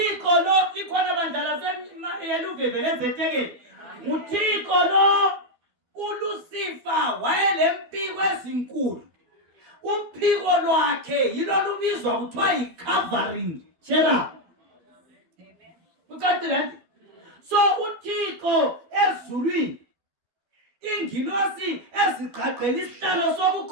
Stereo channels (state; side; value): late; left; 12 ms